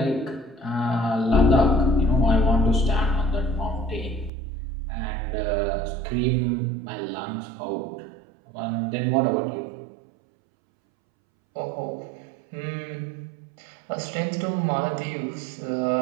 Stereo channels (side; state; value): left; drops out; at 4.3 s